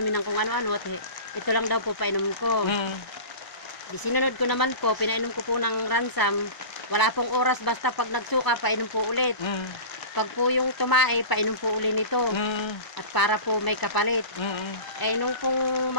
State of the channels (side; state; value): right; late; 1.0 ms